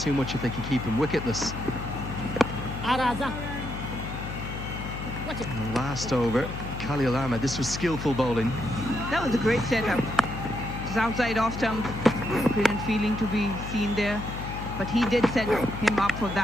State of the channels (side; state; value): left; noise; hum, 7 dB below the sound